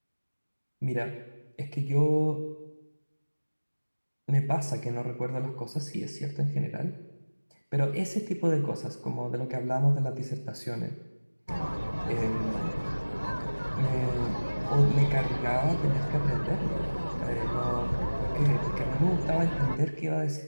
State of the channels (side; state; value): both; inverted; correlation -1.00